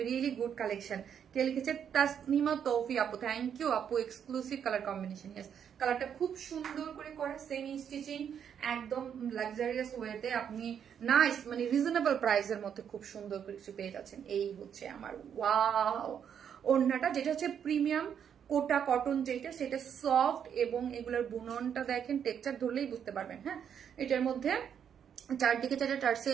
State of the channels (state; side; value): quieter; left; 8.3 dB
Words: রিয়েলি গুড কালেকশন। কে লিখেছে? তাসনিমা তৌফি আপু, থ্যাংক ইউ আপু। এক্সক্লুসিভ কালার কম্বিনেশন, ইয়েস কালারটা খুব সুন্দর করে করা, সেমি স্টিচিং, একদম লাক্সারিয়াস ওয়েতে আপনি নাইস মানে রিজনেবল প্রাইসের মধ্যে খুব সুন্দর কিছু পেয়ে যাচ্ছেন। এই হচ্ছে আমার ওয়াও ওড়নাটা, যেটা হচ্ছে প্রিমিয়াম কোটা কটন, যেটা সেটা সফট, এবং এগুলোর বুননটা দেখেন, টেক্সচার ধরলেই বুঝতে পারবেন। হ্যাঁ, এটার মধ্যে চারদিকে চারটে টার্সে